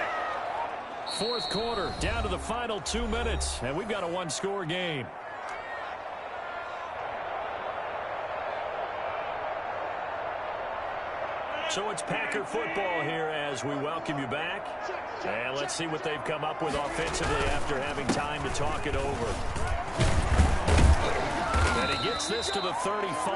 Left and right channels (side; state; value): both; identical; correlation 1.00